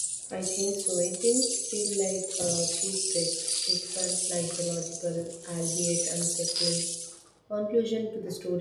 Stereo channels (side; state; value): both; identical; correlation 1.00